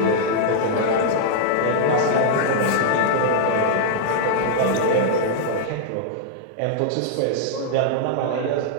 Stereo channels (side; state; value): both; different; correlation -0.02